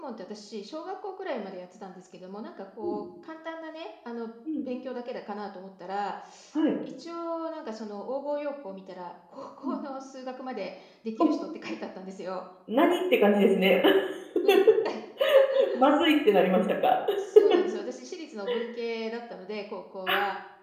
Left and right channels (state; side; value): identical; both; correlation 1.00